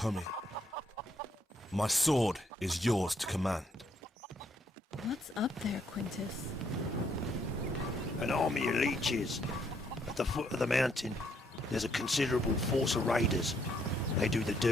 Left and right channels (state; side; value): normal; both; correlation 0.71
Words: My sword is yours to command. What's up there, Quintus? An army of leeches. At the foot of the mountain, there's a considerable force of raiders. They do the